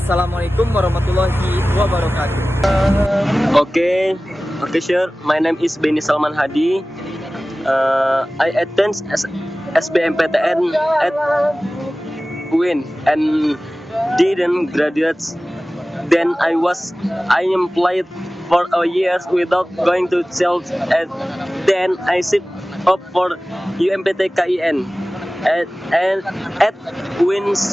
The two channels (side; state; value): both; normal; correlation 0.97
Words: warahmatullahi wabarakatuh. Okay, sure. My name is Beni Salman Hadi. I attend SBMPTN at UIN and didn't graduate. Then I employed for a year without going to sales, and then I sit up for UMPTKIN at UIN